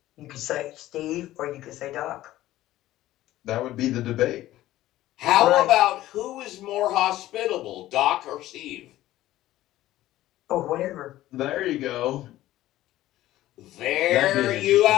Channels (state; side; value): quieter; right; 15.0 dB